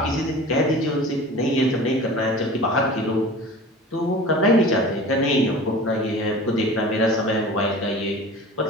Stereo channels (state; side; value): normal; both; correlation 0.39